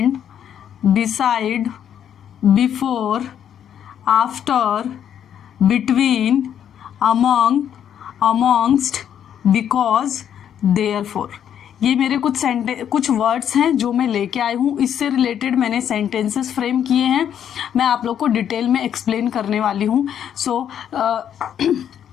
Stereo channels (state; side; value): quieter; right; 9.3 dB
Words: beside, before, after, between, among, amongst, because, therefore। ये मेरे कुछ वर्ड्स हैं जो मैं लेके आई हूँ। इससे रिलेटेड मैंने सेंटेंसेस फ्रेम किए हैं। मैं आप लोग को डिटेल में एक्सप्लेन करने वाली हूँ। सो